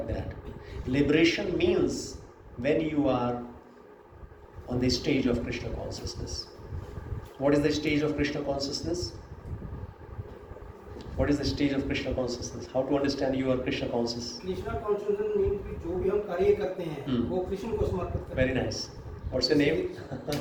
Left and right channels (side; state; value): both; identical; correlation 1.00